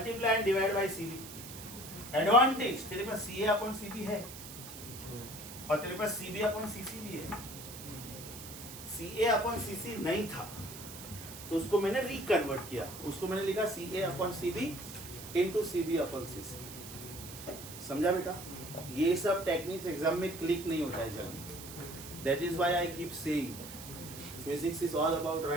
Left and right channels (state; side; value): noise; right; hiss, 12 dB below the sound